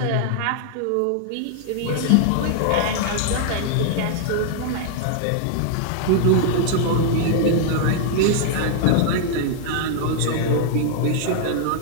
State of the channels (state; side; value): different; both; correlation 0.00